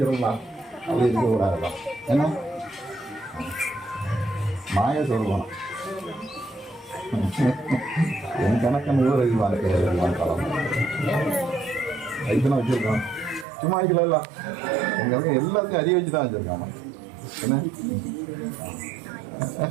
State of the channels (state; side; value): drops out; left; at 13.5 s